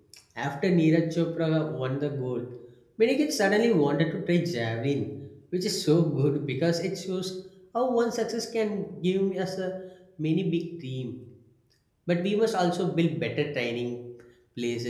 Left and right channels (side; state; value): both; identical; correlation 1.00